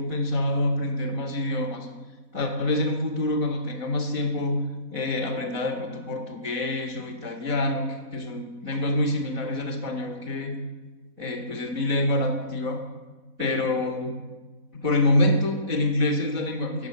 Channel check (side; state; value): left; late; 4.1 ms